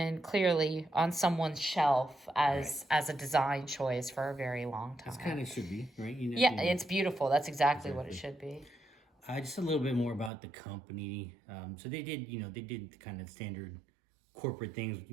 clearly on someone's shelf as a design choice for a very long time. It's kind of should be, right? Yeah, it's beautiful. That's exactly what it should be. Just a little bit more about the company. So they did kind of standard corporate things.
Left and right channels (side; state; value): left; drops out; at 10.3 s